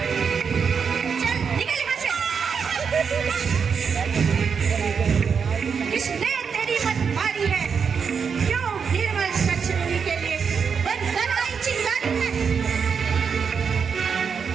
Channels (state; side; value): quieter; left; 6.2 dB